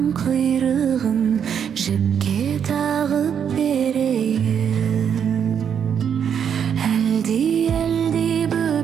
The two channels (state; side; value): quieter; left; 8.0 dB